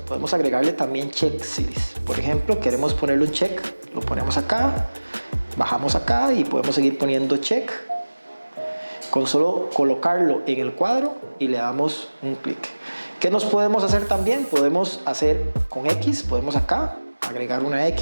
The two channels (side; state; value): both; inverted; correlation -1.00